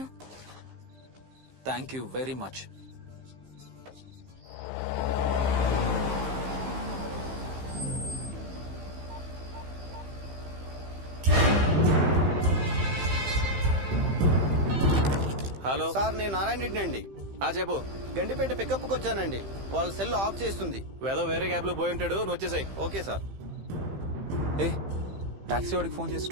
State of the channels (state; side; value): late; left; 15 ms